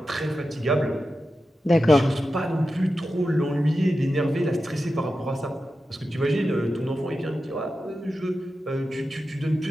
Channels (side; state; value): both; normal; correlation 0.91